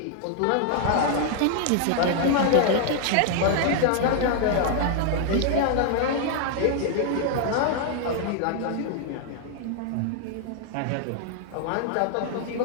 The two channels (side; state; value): both; different; correlation 0.00